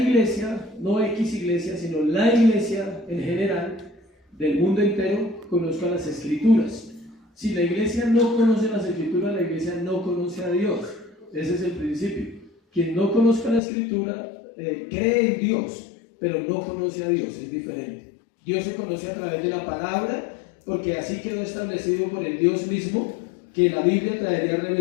no X iglesia, sino la iglesia en general del mundo entero conozca las escrituras. Si la iglesia no conoce las escrituras, la iglesia no conoce a Dios. Ese es el principio. Quien no conozca la escritura cree en Dios, pero no conoce a Dios, es diferente. Dios se conoce a través de la palabra, porque así quedó establecido por el Dios mismo que la Biblia traería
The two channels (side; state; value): right; drops out; at 13.6 s